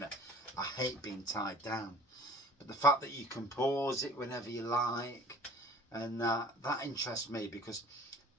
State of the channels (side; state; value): both; normal; correlation 0.48